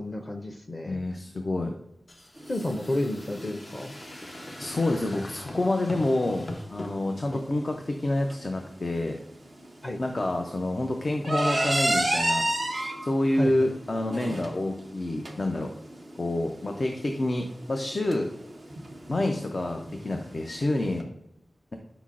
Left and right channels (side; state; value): both; normal; correlation 0.96